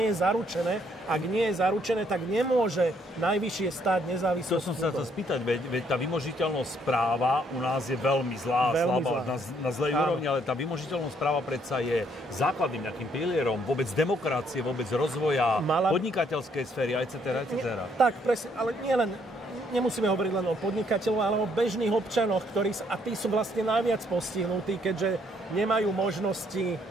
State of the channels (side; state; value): both; normal; correlation 0.69